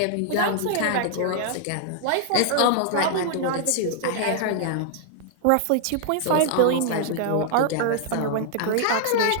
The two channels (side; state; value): both; different; correlation -0.01